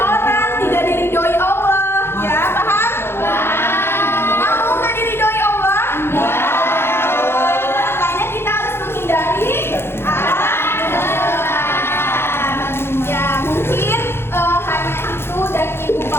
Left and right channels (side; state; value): right; late; 0.11 ms